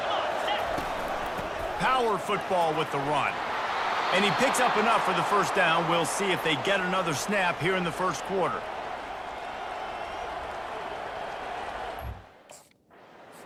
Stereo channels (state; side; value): identical; both; correlation 1.00